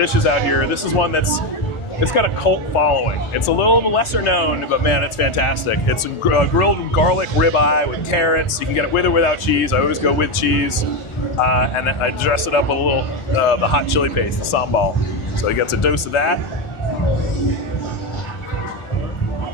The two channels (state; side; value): late; right; 1.4 ms